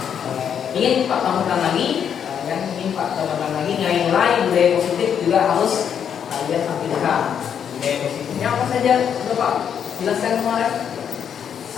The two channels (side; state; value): right; quieter; 8.2 dB